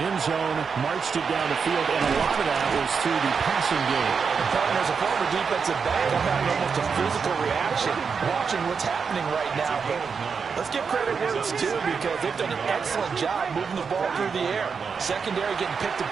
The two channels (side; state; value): left; quieter; 5.8 dB